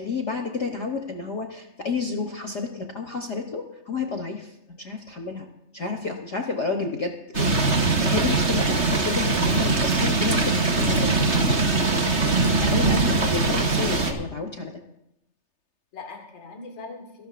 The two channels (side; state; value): right; late; 3.3 ms